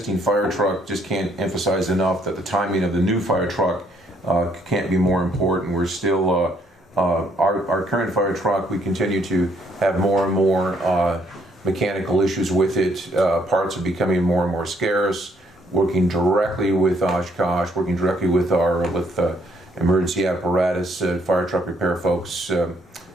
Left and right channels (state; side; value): normal; both; correlation 0.68